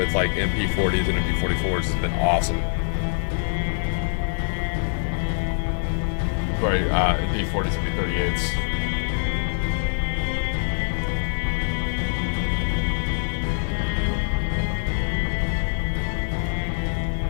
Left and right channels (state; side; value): silent; right; digital silence